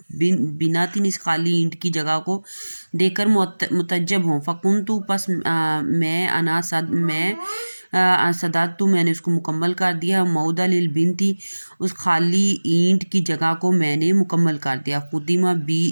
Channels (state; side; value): inverted; both; correlation -1.00